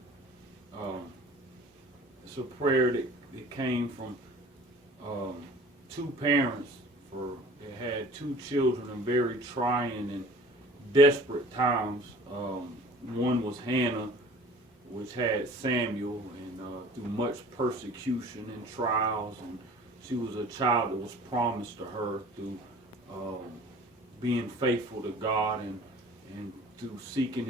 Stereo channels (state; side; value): normal; both; correlation 0.46